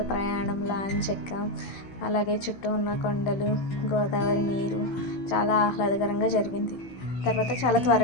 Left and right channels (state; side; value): late; right; 16 ms